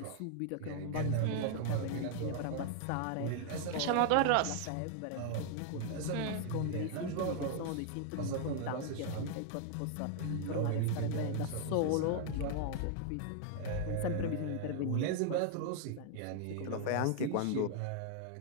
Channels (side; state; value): both; different; correlation 0.00